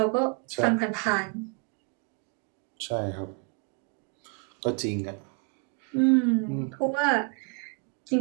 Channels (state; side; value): quieter; left; 37.0 dB